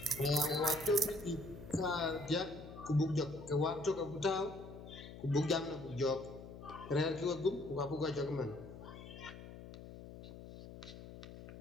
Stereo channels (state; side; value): noise; left; hum, 13 dB below the sound